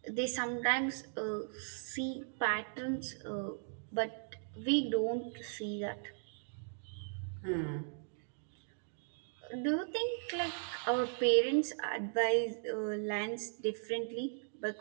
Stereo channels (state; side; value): silent; left; digital silence